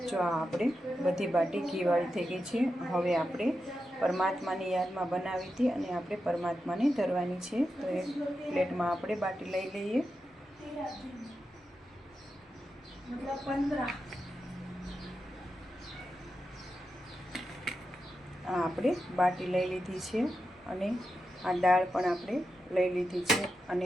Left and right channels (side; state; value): both; normal; correlation 0.89